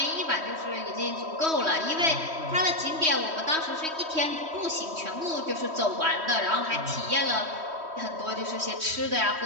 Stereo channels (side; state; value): left; late; 3.1 ms